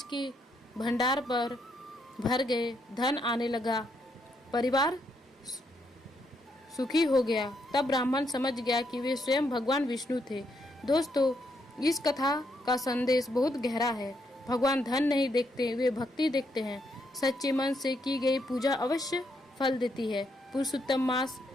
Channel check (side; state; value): both; normal; correlation 0.76